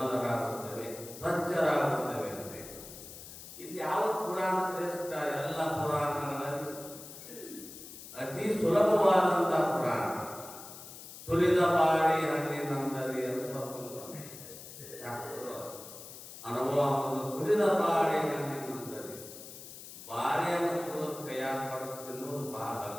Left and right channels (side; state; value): left; noise; hiss, 14 dB below the sound